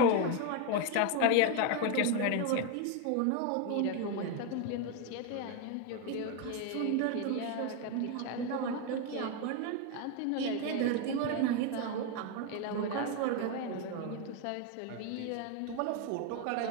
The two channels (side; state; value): both; different; correlation 0.01